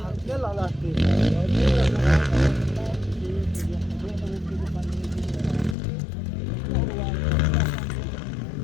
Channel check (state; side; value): drops out; right; at 5.8 s